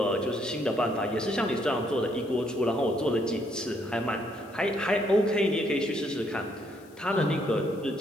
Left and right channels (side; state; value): left; noise; hiss, 28 dB below the sound